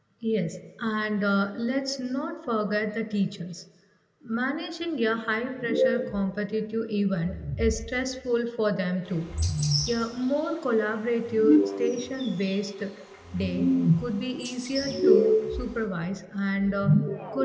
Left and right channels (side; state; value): both; identical; correlation 1.00